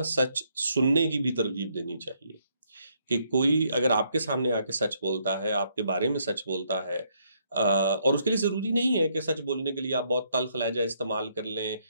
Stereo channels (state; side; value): inverted; both; correlation -0.72